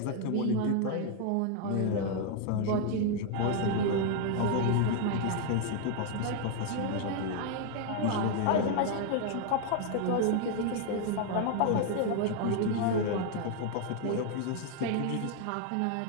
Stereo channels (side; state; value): both; different; correlation 0.00